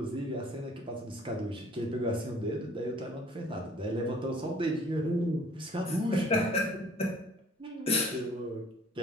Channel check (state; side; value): normal; both; correlation 0.54